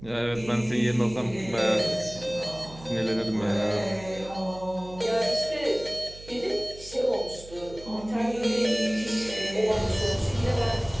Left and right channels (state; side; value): noise; right; hum, 18 dB below the sound